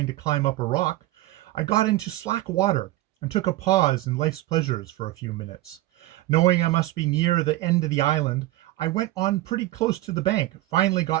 to climb up a rock, I got into slack water, and took a pause in life's pleasures for a few minutes. Knowing I must be near the end of the island, I went on pretty close to the bank, finally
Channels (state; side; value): quieter; left; 17.0 dB